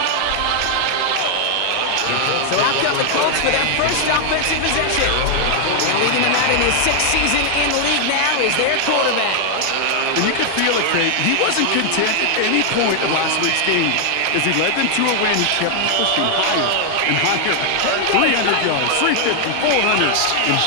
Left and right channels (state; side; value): different; both; correlation 0.00